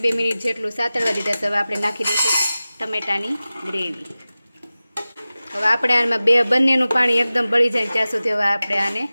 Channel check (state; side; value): inverted; both; correlation -0.96